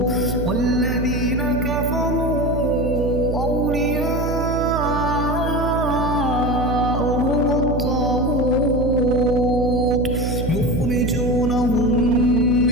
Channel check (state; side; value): noise; right; hum, 3 dB below the sound